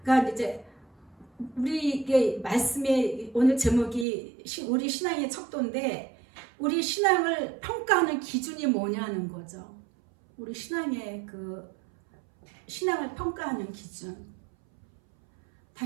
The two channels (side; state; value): left; drops out; at 4.0 s